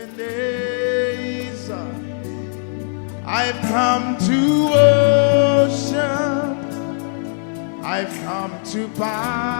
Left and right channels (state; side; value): silent; right; 65 dB below the other